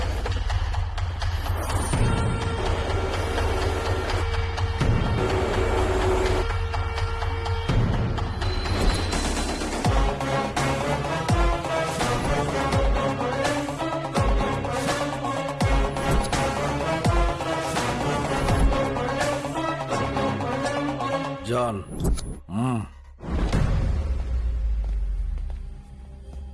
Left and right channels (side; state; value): both; identical; correlation 1.00